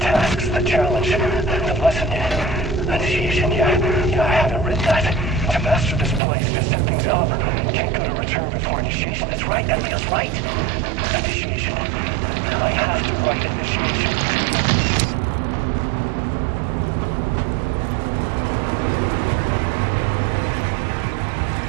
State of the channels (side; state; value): left; drops out; at 6.2 s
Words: the challenge, the lesson, initiation. Yeah, I haven't written that. To master this place, to set things up. Can't go to return before initiation. That's right. That feels right. Initiation. I have to write initiation.